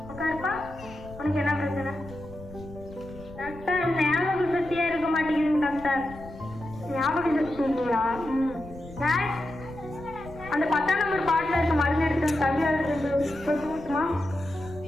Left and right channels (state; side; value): noise; left; rumble, 16 dB below the sound